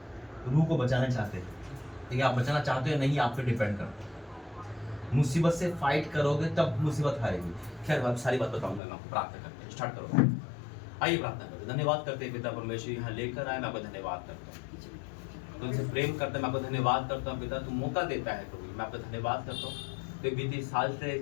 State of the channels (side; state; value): right; drops out; at 8.8 s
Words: रूह को बचाना चाहते हैं, ठीक है? आप बचाना चाहते हो या नहीं, आप पे डिपेंड करता है। मुसीबत से फाइट करोगे तब मुसीबत हारेगी। खैर, मैं सारी बात बताऊंगा, मैं आपको प्रार्थना करते हैं, स्टार्ट करो। आइए प्रार्थना करते हैं। धन्यवाद करते हैं पिता परमेश्वर, यहाँ लेकर आए, मैं आपका धन्यवाद करता हूँ। तुमसे प्रेम करते हैं, मैं आपका धन्यवाद करता हूँ पिता, तू मौका देता है प्रभु, मैं आपका धन्यवाद करता हूँ। तो बीते साल से